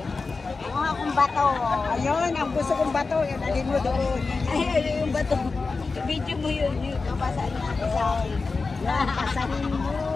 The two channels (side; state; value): right; quieter; 4.1 dB